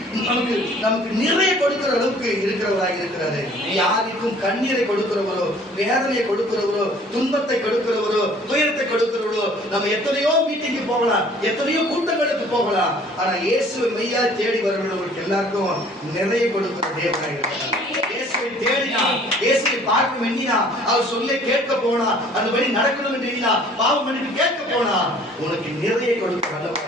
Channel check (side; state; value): both; normal; correlation 0.54